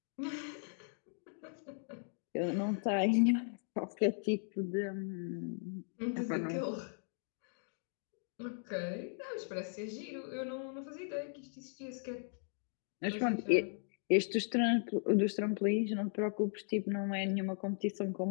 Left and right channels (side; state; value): right; silent; 53 dB below the other